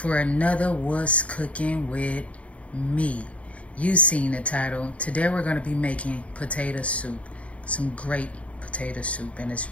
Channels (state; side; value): late; right; 0.064 ms